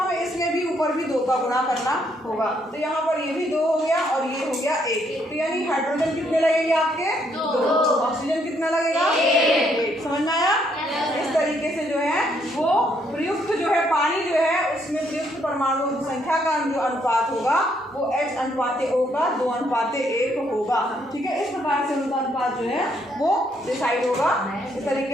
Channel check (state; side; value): normal; both; correlation 0.72